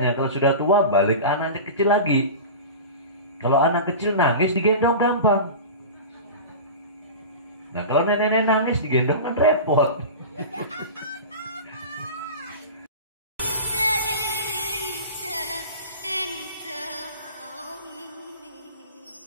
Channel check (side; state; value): both; inverted; correlation -0.31